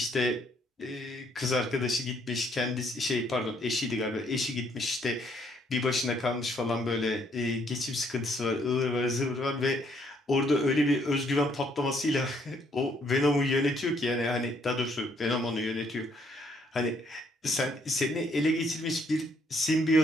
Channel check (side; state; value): both; normal; correlation 0.68